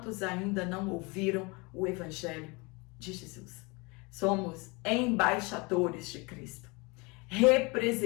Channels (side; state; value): right; quieter; 27.4 dB